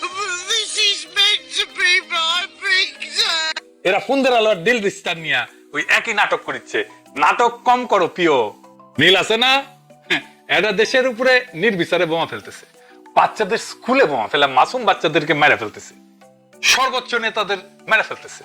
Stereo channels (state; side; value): identical; both; correlation 1.00